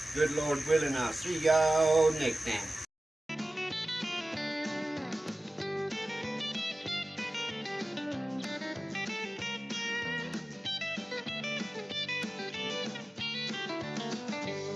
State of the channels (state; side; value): normal; both; correlation 0.97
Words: Good Lord willing, I'll see y'all next time.